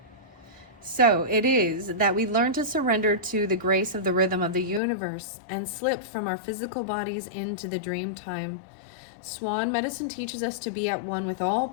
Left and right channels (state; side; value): drops out; right; at 4.8 s